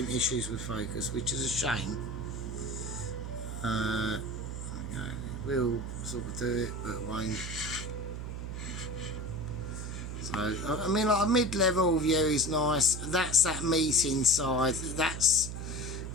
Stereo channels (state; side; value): noise; right; hum, 6 dB below the sound